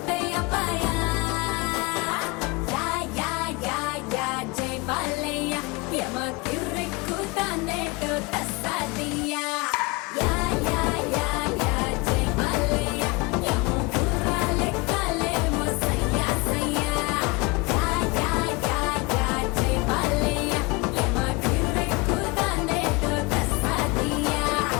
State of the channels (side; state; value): right; quieter; 25.7 dB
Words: పాయా యా యా యా యా జై బాలయ్య యమ కిర్రిక్కు తానేటో తస్సాదియా యా యా యా యా జై బాలయ్య యమ గుర్రాలే కాలేమో సయ్యా సయ్యా యా యా యా యా జై బాలయ్య యమ కిర్రిక్కు తానేటో తస్సాదియా